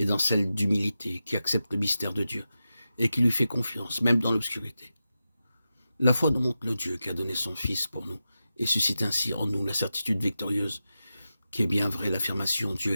dans celle d'humilité, qui accepte le mystère de Dieu, et qui lui fait confiance, même dans l'obscurité. La foi nous montre le Dieu qui a donné son Fils pour nous, et suscite ainsi en nous la certitude victorieuse, qui est bien vraie l'affirmation « Dieu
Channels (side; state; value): both; inverted; correlation -0.91